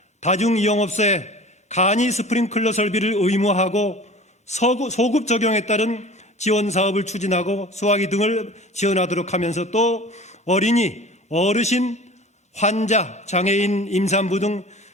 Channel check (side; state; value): both; normal; correlation 0.41